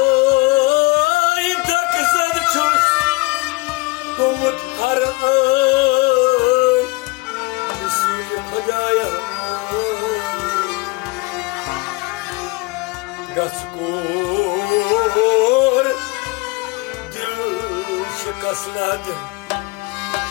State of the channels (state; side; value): quieter; right; 24.5 dB